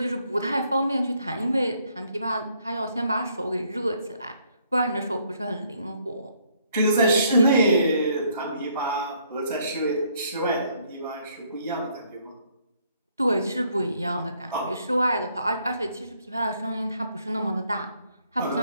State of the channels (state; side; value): inverted; both; correlation -0.68